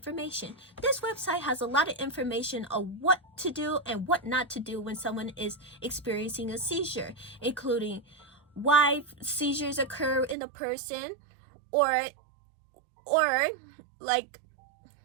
This website has a lot of information on what to do and what not to do when someone is experiencing a seizure, including why seizures occur in a person, or like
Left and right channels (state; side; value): drops out; left; at 10.4 s